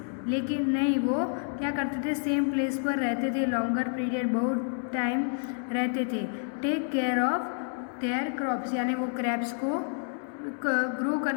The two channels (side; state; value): right; silent; 59 dB below the other